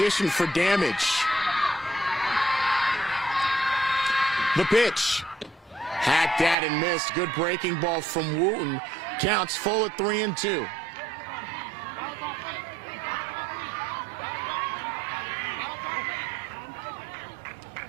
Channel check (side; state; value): left; drops out; at 6.6 s